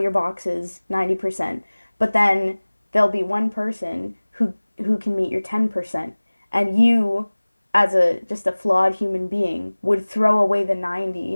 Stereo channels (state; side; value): inverted; both; correlation -1.00